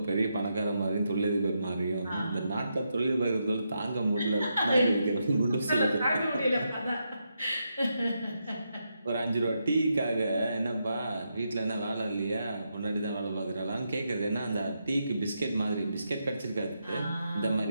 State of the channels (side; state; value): both; inverted; correlation -0.83